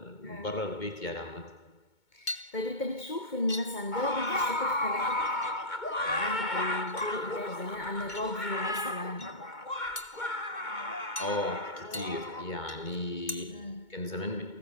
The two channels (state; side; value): late; right; 2.2 ms